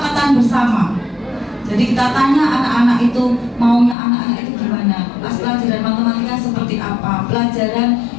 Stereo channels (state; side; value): drops out; right; at 4.0 s